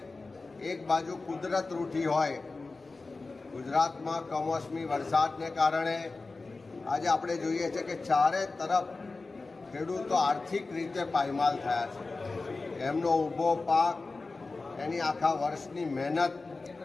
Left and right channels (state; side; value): quieter; right; 3.7 dB